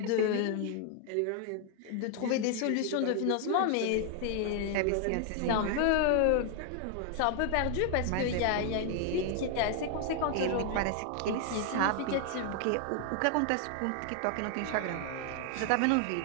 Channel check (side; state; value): both; different; correlation 0.00